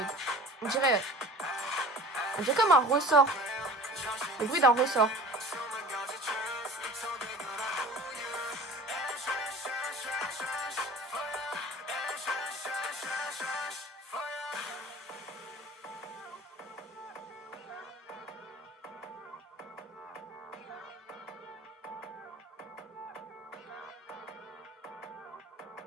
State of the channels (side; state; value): both; normal; correlation 0.42